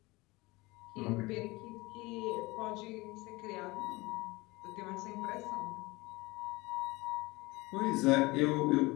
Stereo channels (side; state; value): right; quieter; 22.5 dB